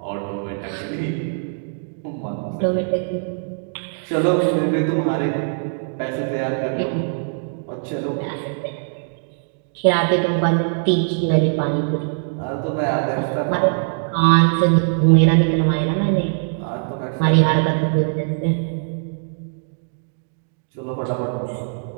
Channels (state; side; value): silent; left; digital silence